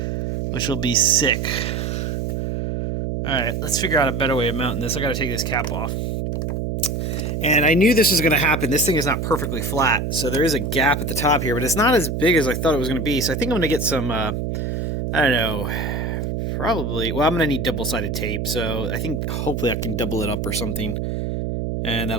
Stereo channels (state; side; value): noise; right; hum, 2 dB below the sound